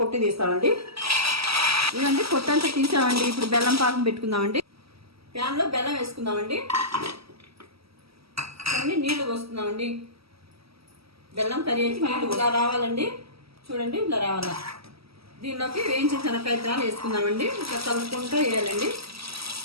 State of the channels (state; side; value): late; left; 0.76 ms